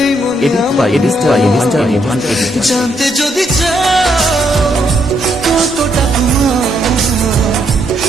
মনে আমার। জানতে যদি চাও কতটা তোমার,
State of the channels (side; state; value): both; normal; correlation 0.75